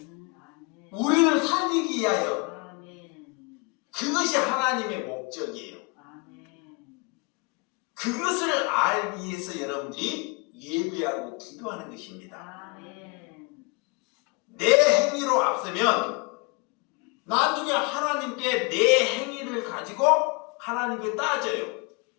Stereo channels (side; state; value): right; quieter; 29.5 dB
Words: 우리를 살리기 위하여. 그것이 하나님의 목적이에요. 그것을 알기 위해서 여러분들이 예배하고 기도하는 것입니다. 내 행위로 앞서면 나중에 하나님께 내 행위를 가지고 하나님께 따져요.